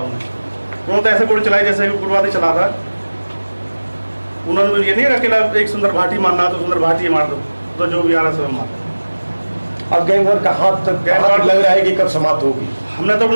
तुरंत ऐसे गोली चलाई जैसे उग्रवादी चला रहा। उन्होंने ये नहीं अकेला एक सुंदर भाटी मारना तो सुंदर भाटी मार दो, तो जो भी आ रहा सब मार। अब गैंग वॉर का हाथ तक लग रहा है कि कब समाप्त होगी? हमने तो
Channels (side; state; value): both; inverted; correlation -1.00